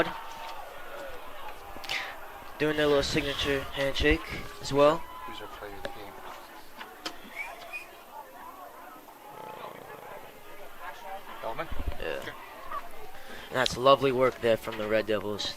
Doing their little signature handshake as well. Yeah. And that's lovely work there from the Red Devils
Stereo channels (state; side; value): identical; both; correlation 1.00